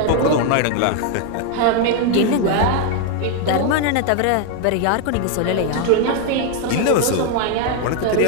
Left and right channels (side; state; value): both; different; correlation 0.01